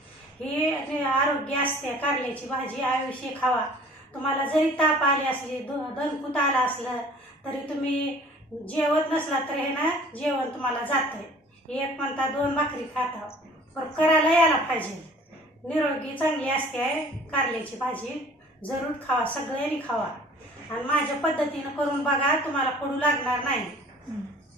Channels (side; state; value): both; normal; correlation 0.50